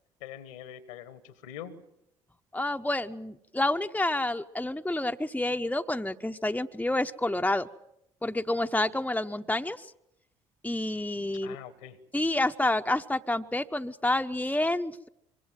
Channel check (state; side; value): normal; both; correlation 0.83